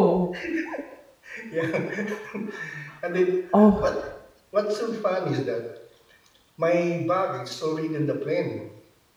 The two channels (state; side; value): identical; both; correlation 1.00